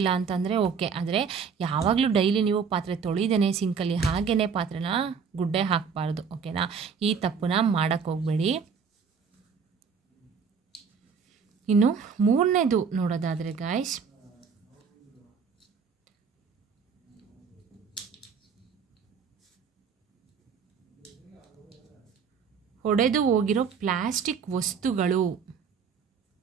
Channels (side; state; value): left; quieter; 6.1 dB